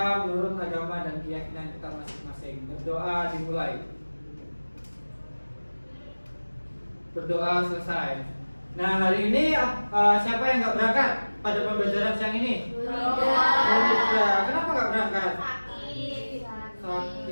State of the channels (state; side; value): inverted; both; correlation -1.00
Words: menurut agama dan keyakinan kita masing-masing. Berdoa dimulai. Berdoa selesai. Nah, hari ini siapa yang nggak berangkat pada pembelajaran siang ini? Tidak. Kenapa nggak berangkat?